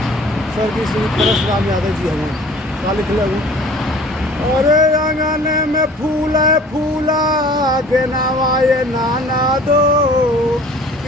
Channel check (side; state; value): both; normal; correlation 0.48